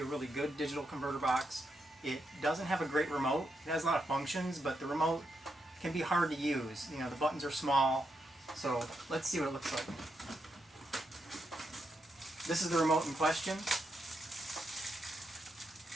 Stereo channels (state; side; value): normal; both; correlation 0.82